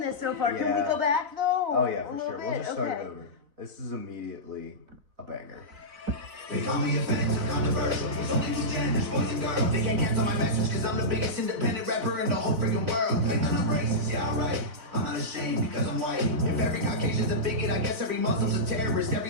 this so far. Can Yeah. we go back though? Oh yeah, A for little sure. We'll bit? just start Okay. it over. This is immediately a banger. They call me offensive, controversial. There's only two genders, boys and girls. They can't cancel my message cause I'm the biggest independent rapper in the whole freaking world. Like I'm not racist, yeah, alright. I'm not ashamed because I'm white. If every Caucasian's a bigot, I guess every Muslim's a terrorist.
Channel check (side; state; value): left; late; 4.0 ms